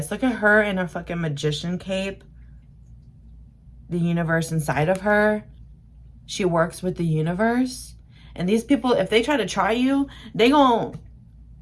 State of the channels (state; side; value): identical; both; correlation 1.00